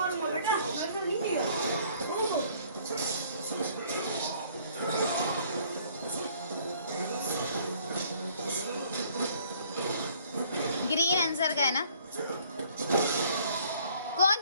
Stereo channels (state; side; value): inverted; both; correlation -0.59